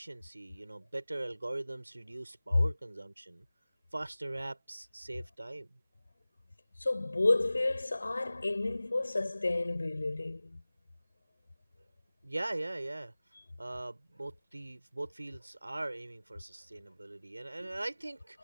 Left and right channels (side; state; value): both; inverted; correlation -0.98